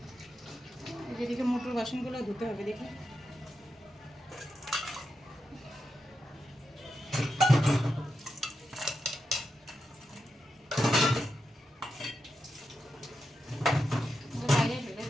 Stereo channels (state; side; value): normal; both; correlation 0.87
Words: যেদিকে মোটর বাসনগুলো ধুতে হবে, দেখি। বাইরে ফেলে